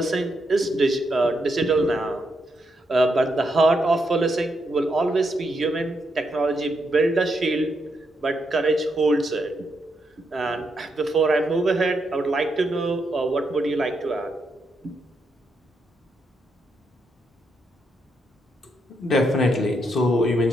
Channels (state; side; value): normal; both; correlation 0.80